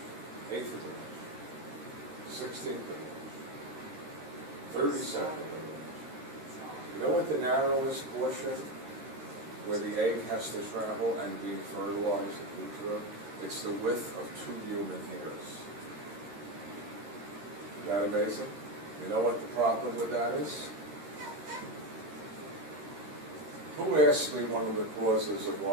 eighth of an inch, 16th of an inch, 32nd of an inch. You know what the narrowest portion where the egg has to travel and be fertilized in utero? It's the width of 2 human hairs. Isn't that amazing? You know what the problem with that is? Who asked me one of the causes of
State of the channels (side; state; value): left; late; 13 ms